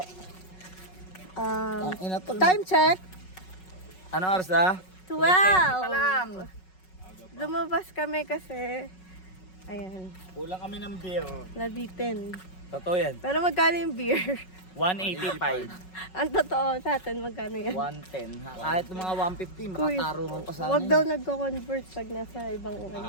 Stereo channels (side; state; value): right; late; 5.4 ms